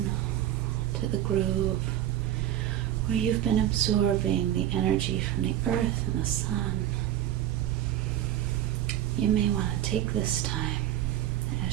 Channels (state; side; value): quieter; left; 12.0 dB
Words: to the groove where you've been absorbing the energy from the earth and the sun, you may want to take this time,